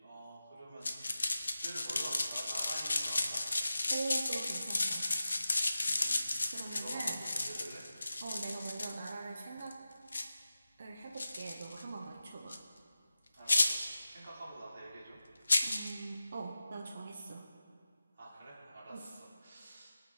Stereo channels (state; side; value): inverted; both; correlation -0.93